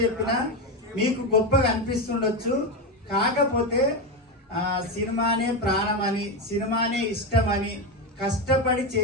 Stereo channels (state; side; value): normal; both; correlation 0.12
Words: చెప్పినా మీకు గొప్పగా అనిపిస్తుండొచ్చు. కాకపోతే సినిమానే ప్రాణం అని, సినిమానే ఇష్టం అని కష్టపడి